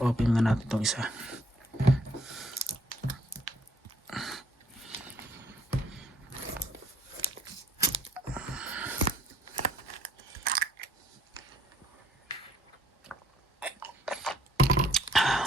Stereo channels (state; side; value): normal; both; correlation 0.64